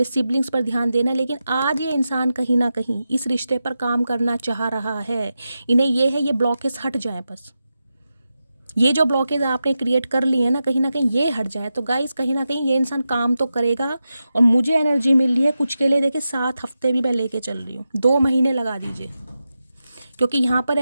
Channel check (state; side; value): inverted; both; correlation -0.90